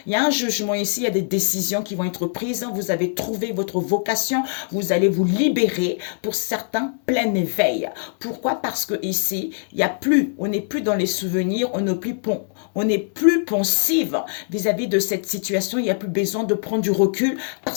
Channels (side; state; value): right; silent; 64 dB below the other